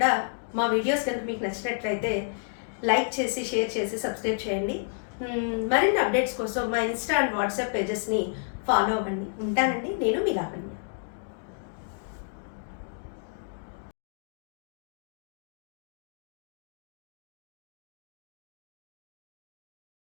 మా వీడియోస్ కనుక మీకు నచ్చినట్లయితే లైక్ చేసి, షేర్ చేసి, సబ్స్క్రైబ్ చేయండి. మరిన్ని అప్డేట్స్ కోసం మా ఇన్స్టా అండ్ వాట్సాప్ పేజెస్ని ఫాలో అవ్వండి. ఉంటానండి, నేను మీ లావణ్య.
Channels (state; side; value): silent; right; digital silence